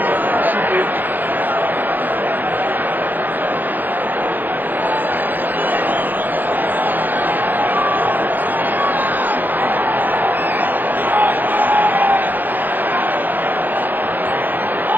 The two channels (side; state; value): left; late; 0.086 ms